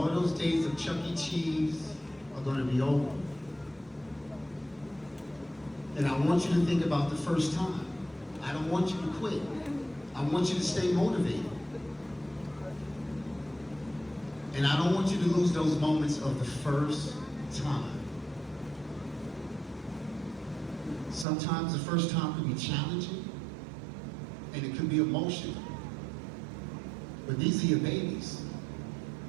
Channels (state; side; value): drops out; left; at 21.2 s